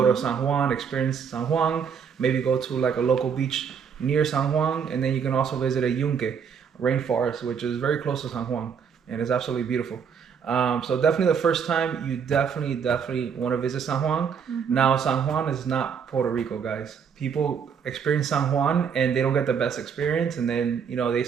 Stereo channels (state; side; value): quieter; left; 6.9 dB